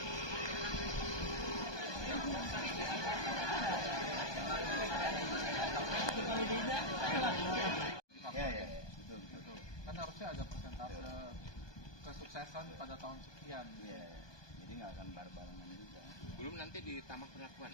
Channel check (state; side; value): late; right; 1.2 ms